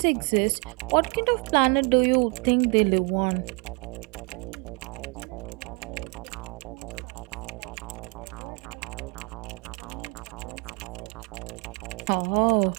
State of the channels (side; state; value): left; quieter; 32.5 dB